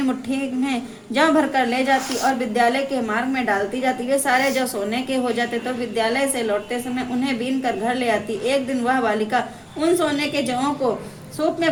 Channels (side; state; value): both; identical; correlation 1.00